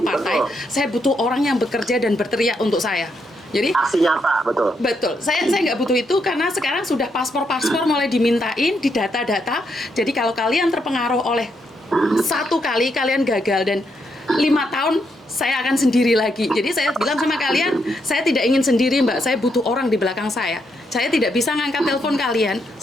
partai. Saya butuh orang yang bekerja dan berteriak untuk saya. Jadi aksi nyata, betul. Saya nggak butuh itu karena sekarang sudah paspor mulai dimintain, di data-data. Jadi kalau kalian terpengaruh oleh satu kali kalian gagal dan 5 tahun saya akan sendiri lagi. Jadi saya bilang sama kalian, saya tidak ingin sendiri Mbak, saya butuh orang di belakang saya. Saya tidak bisa ngangkat telepon kalian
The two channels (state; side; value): normal; both; correlation 0.79